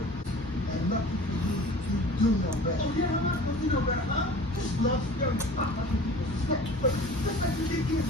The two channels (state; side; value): normal; both; correlation 0.42